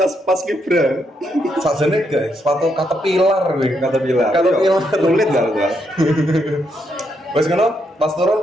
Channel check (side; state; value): both; normal; correlation 0.78